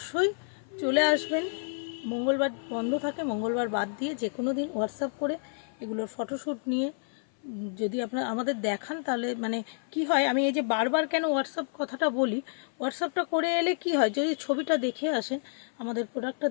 চলে আসবেন। মঙ্গলবার বন্ধ থাকে, মঙ্গলবার বাদ দিয়ে যে কোনো দিন হোয়াটসঅ্যাপ করে এগুলোর ফটোশ্যুট নিয়ে যদি আপনারা আমাদের দেখান, তাহলে মানে কি হয়, আমি এই যে বারবার কেন হোয়াটসঅ্যাপ কথাটা বলি, হোয়াটসঅ্যাপটা করে এলে কি হয়, যদি ছবিটা দেখে আসেন আমাদের প্রোডাক্টটা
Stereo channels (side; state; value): right; silent; 56 dB below the other